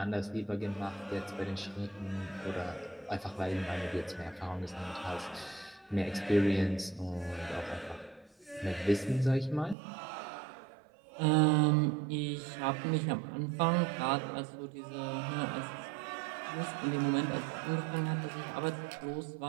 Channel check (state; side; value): drops out; left; at 9.8 s